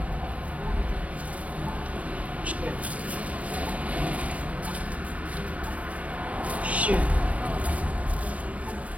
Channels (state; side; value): late; left; 0.068 ms